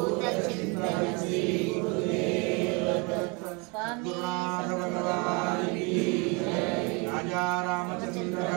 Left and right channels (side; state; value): left; quieter; 30.5 dB